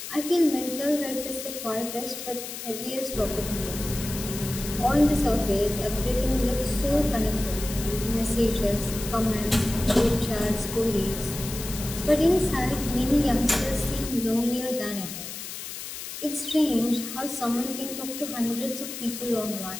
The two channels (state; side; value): noise; left; hiss, 9 dB below the sound